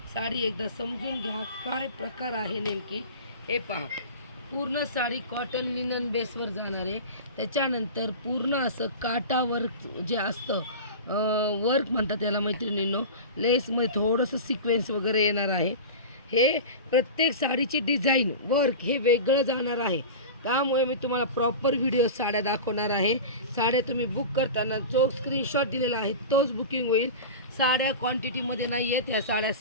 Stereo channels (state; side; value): inverted; both; correlation -0.30